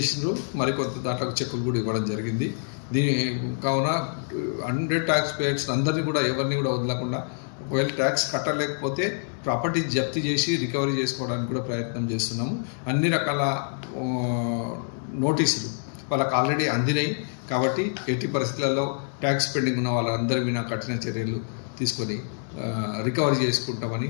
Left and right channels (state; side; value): silent; right; digital silence